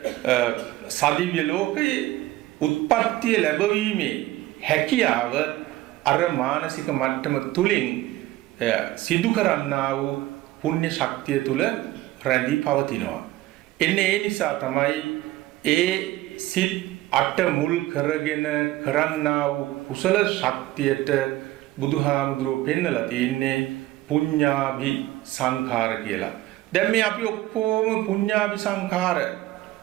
සදිව්‍ය ලෝකයේ උත්පත්තිය ලැබවීමේ හැකියාව අර මානසික මට්ටම තුලින් සිදු කරන්නා වූ පුණ්‍ය ශක්තිය තුල රැඳී පවතිනවා. එන්නේ ඒ නිසා තමයි ඒ සිත් අට මුල් කරගෙන කරන්නා වූ කුසල ශක්තියට බුදුහාමුදුරුවෝ පෙන්නලා තියෙන්නේ පුඤ්ඤාභි සංඛාර කියලා. දැන් මේ අපි ඔක්කොම පුඤ්ඤාභි සංඛාර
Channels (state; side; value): quieter; left; 16.4 dB